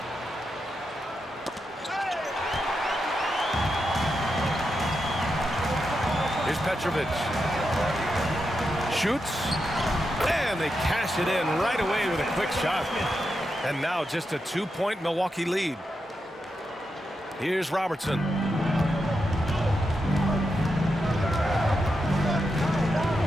Here's Petrovic. Shoots. And they cash it in right away with a quick shot. And now just a 2-point Milwaukee lead. Here's Robertson.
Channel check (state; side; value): normal; both; correlation 0.86